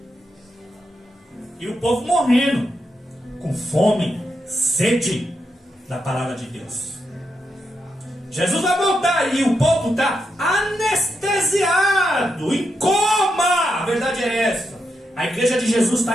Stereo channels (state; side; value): normal; both; correlation 0.84